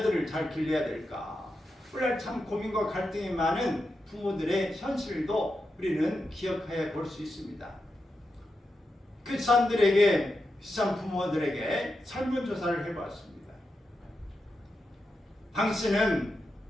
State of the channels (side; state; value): both; normal; correlation 0.88